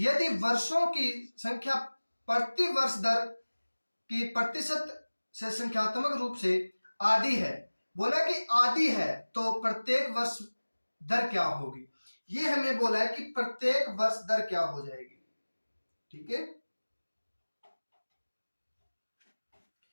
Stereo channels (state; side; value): inverted; both; correlation -1.00